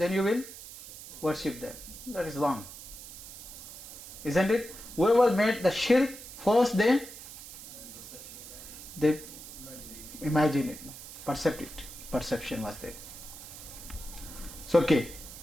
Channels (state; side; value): noise; right; hiss, 14 dB below the sound